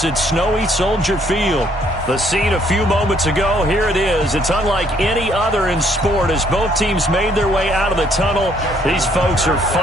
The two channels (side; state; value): both; normal; correlation 0.66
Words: at snowy Soldier Field. The scene a few moments ago, here it is. It's unlike any other in sport as both teams made their way out of the tunnel. These folks are